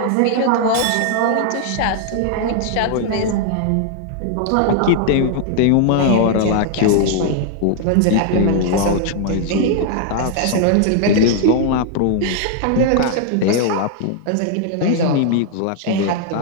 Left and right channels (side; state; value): both; different; correlation 0.00